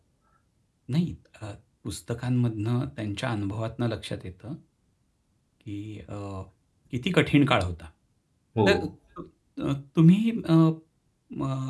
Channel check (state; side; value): identical; both; correlation 1.00